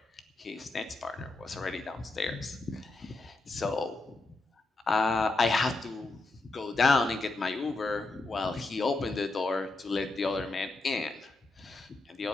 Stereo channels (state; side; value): quieter; right; 3.3 dB